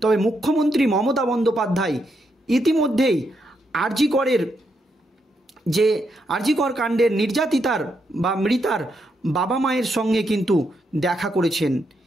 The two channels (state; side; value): normal; both; correlation 0.80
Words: তবে মুখ্যমন্ত্রী মমতা বন্দ্যোপাধ্যায় ইতিমধ্যেই আর.জি. কর কাণ্ডের নির্যাতিতার বা মৃতার বাবা মায়ের সঙ্গে কিন্তু দেখা করেছেন